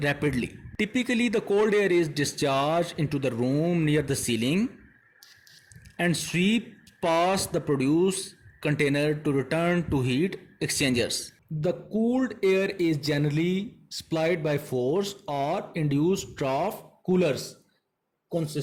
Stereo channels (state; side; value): identical; both; correlation 1.00